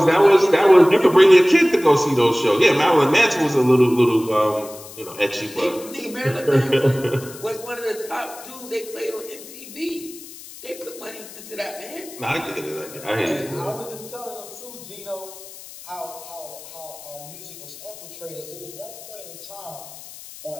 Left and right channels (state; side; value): noise; left; hiss, 16 dB below the sound